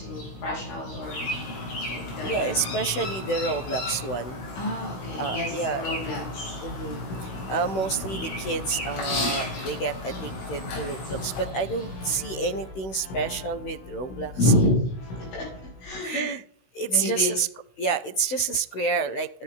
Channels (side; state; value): right; late; 16 ms